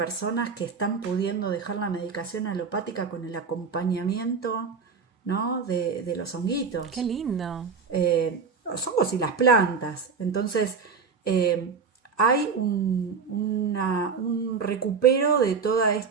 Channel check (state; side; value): quieter; left; 5.5 dB